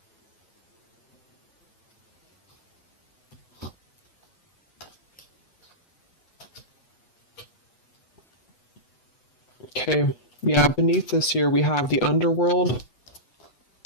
Okay, yeah, beneath this here we have the underworld,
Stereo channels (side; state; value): right; late; 8.1 ms